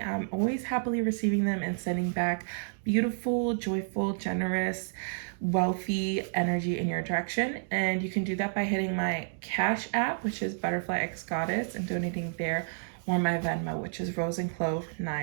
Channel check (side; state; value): left; silent; digital silence